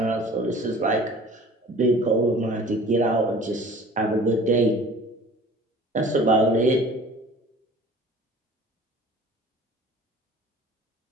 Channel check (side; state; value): both; normal; correlation 0.46